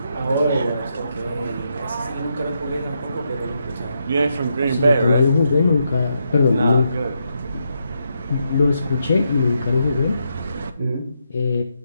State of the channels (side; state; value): both; inverted; correlation -0.81